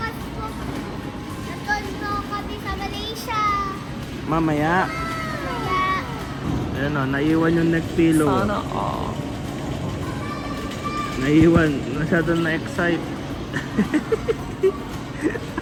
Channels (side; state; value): both; identical; correlation 1.00